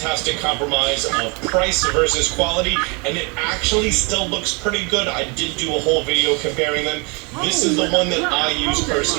compromise of price versus quality, and it actually still looks pretty good. I did do a whole video comparing them. This is the one that I use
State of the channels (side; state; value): left; quieter; 31.2 dB